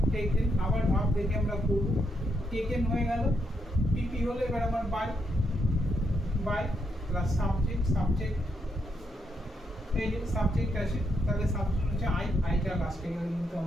taken. আবার ভাব দেখে আমরা করব। টেকেন হয়ে গেল। পিপি হলো এবার আমার by, by plus subject, subject এই যে সাবজেক্ট আছে, তাহলে সাবজেক্ট হচ্ছে আই, আইটা লাস্টে গেলে কিন্তু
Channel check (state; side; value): normal; both; correlation 0.79